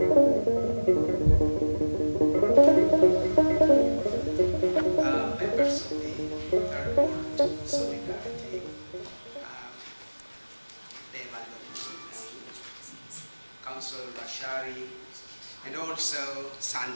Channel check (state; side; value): inverted; both; correlation -1.00